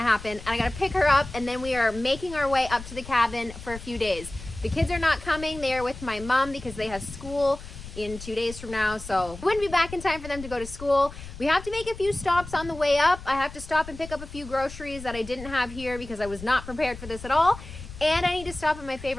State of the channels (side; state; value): left; noise; rumble, 13 dB below the sound